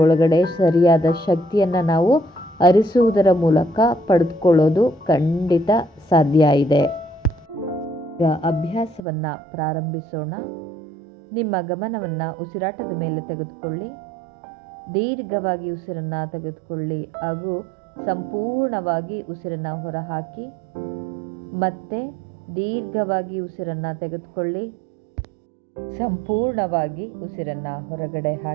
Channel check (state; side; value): drops out; left; at 9.0 s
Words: ಒಳಗಡೆ ಸರಿಯಾದ ಶಕ್ತಿಯನ್ನು ನಾವು ಅರಿಸುವುದರ ಮೂಲಕ ಪಡೆದುಕೊಳ್ಳೋದು ಖಂಡಿತ ಸಾಧ್ಯ ಇದೆ. ಈಗ ಅಭ್ಯಾಸವನ್ನು ಪ್ರಾರಂಭಿಸೋಣ. ನಿಮ್ಮ ಗಮನವನ್ನು ಉಸಿರಾಟದ ಮೇಲೆ ತೆಗೆದುಕೊಳ್ಳಿ. ದೀರ್ಘವಾಗಿ ಉಸಿರನ್ನು ತೆಗೆದುಕೊಳ್ಳಿ ಹಾಗೂ ಸಂಪೂರ್ಣವಾಗಿ ಉಸಿರನ್ನು ಹೊರಹಾಕಿ. ಮತ್ತೆ ದೀರ್ಘವಾಗಿ ಉಸಿರನ್ನು ತೆಗೆದುಕೊಳ್ಳಿ, ಸಂಪೂರ್ಣವಾಗಿ ಉಸಿರನ್ನು ಹೊರಗಡೆ